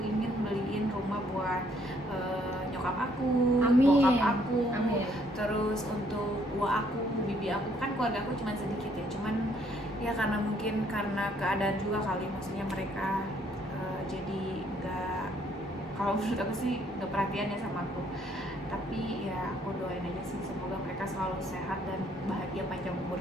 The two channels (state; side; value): normal; both; correlation 0.67